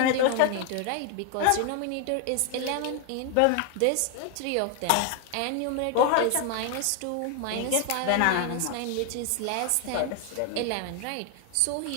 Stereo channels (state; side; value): different; both; correlation 0.00